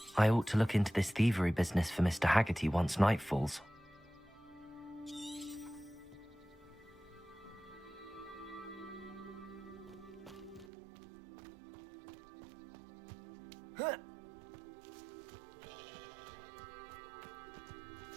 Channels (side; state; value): left; drops out; at 10.7 s